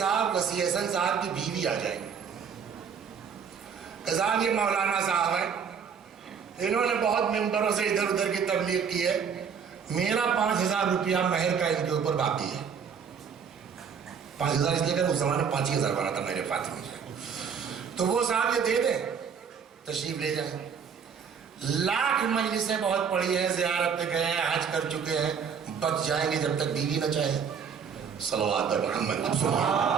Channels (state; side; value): quieter; left; 6.8 dB